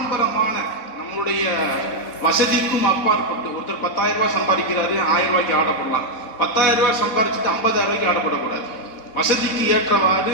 நம்மளுடைய வசதிக்கும் அப்பாற்பட்டு ஒருத்தர் 10,000 ரூபாய் சம்பாதிக்கிறாரு, 1000 ரூபாய்க்கு ஆடப்படலாம். 10,000 ரூபாய் சம்பாதிச்சுட்டு 50,000 ரூபாய்க்கு ஆடப்படக்கூடாது. வசதிக்கு ஏற்றவாறு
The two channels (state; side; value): late; right; 4.1 ms